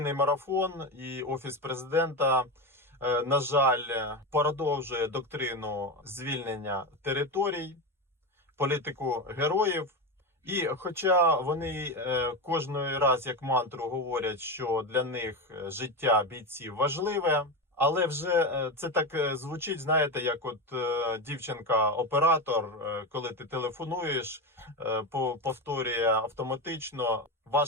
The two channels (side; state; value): both; normal; correlation 0.17